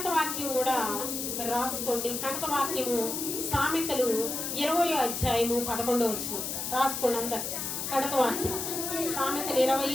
వాక్యం కూడా మరి రాసుకోండి. కంటక వాక్యము సామెతలు 20వ అధ్యాయము 11 రాసుకోండి అందరు. కంటక వాక్యం సామెతలు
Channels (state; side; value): noise; left; hiss, 3 dB below the sound